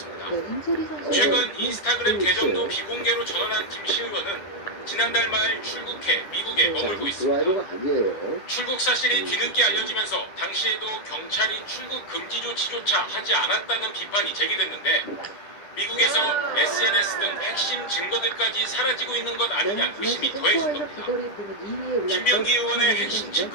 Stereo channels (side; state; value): right; late; 10 ms